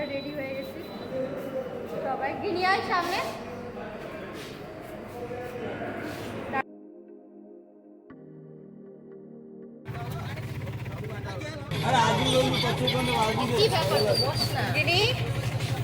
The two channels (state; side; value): identical; both; correlation 1.00